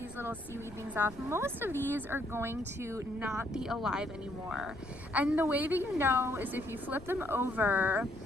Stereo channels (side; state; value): left; noise; rumble, 18 dB below the sound